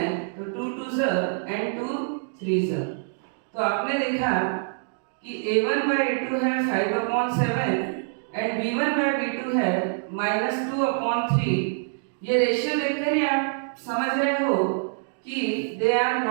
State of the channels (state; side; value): silent; left; digital silence